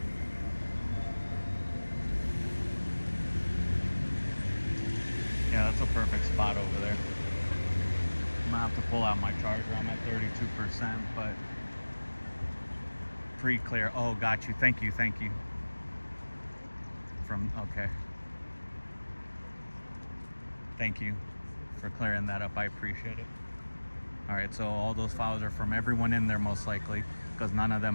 pull out my charger. I'm at 32%, but pre-clear. Oh, got you. Thank you. Thank you. Okay. Thank you for clearing that up. I appreciate it. All right, so all those files are from everyone in there most likely, because none of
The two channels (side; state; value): both; inverted; correlation -1.00